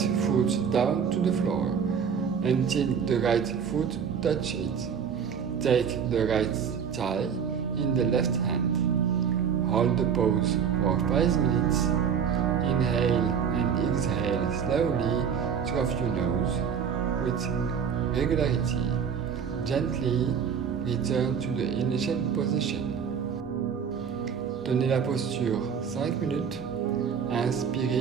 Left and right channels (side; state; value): left; quieter; 7.2 dB